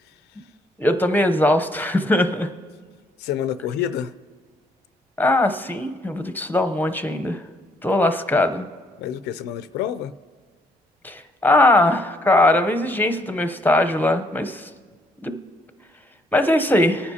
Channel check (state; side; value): normal; both; correlation 0.69